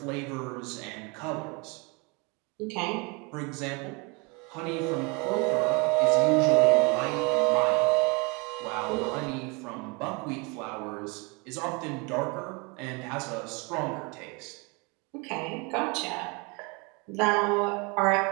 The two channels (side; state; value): left; quieter; 29.5 dB